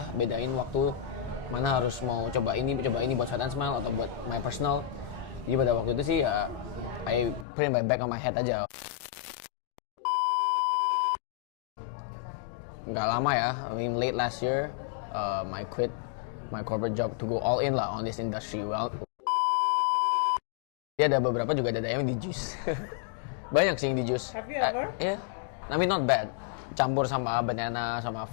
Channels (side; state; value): right; drops out; at 7.5 s